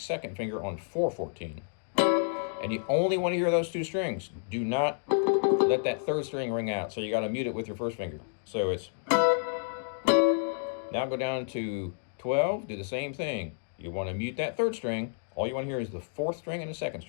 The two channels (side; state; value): right; silent; digital silence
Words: finger on 4-14. And you only want to hear those 2 strings. Do not let that 3rd string ring out. So you got to mute it with your 1st finger. So it's, now go down to 12, do the same thing. You want to mute that 3rd string. All you want to hear is the 4th string and the 2nd